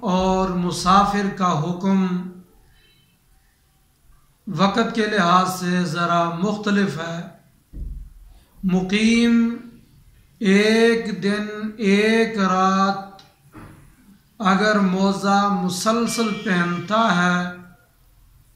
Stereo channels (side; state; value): both; identical; correlation 1.00